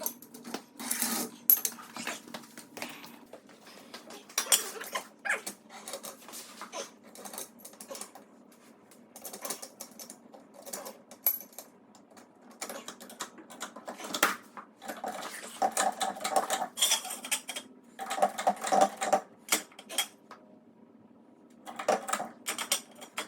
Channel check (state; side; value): identical; both; correlation 1.00